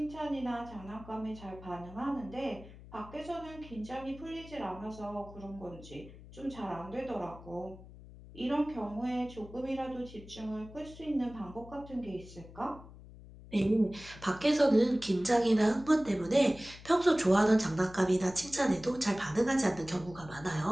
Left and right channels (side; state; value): left; noise; hum, 18 dB below the sound